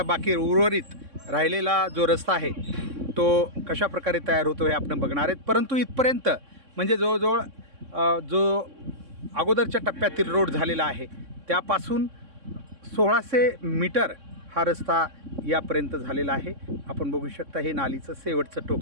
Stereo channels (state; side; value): late; left; 3.6 ms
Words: बाकी उर्वरित राहिलेला जो रस्ता आहे तो कशा प्रकारे तयार होतो हे आपण बघणार आहेत। परंतु इथपर्यंत म्हणजे जवळजवळ जो अगोदरच्या टप्प्यातील रोड झालेला आहे त्यापासून 1600 मीटर हा रस्ता यापर्यंत झालेला आहे। आपण बघू शकता हे नालीचं शेवटचं